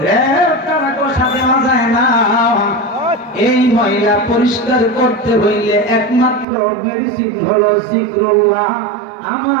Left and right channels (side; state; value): left; drops out; at 6.5 s